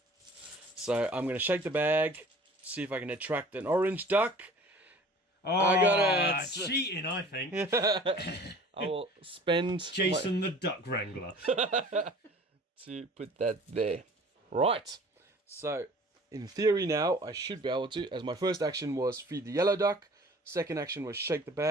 So I'm going to shake the bag, see if I can attract an orange duck. Oh, I got it. Cheating, I think. I will spend Jason the Duck Wrangler to put that there. Right. So, in theory now, I should be able to, as my first action was feed the yellow duck. Second action was shake the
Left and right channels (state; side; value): normal; both; correlation 0.47